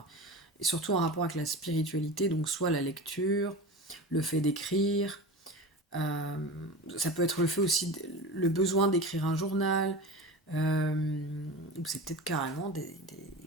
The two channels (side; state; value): both; normal; correlation 0.31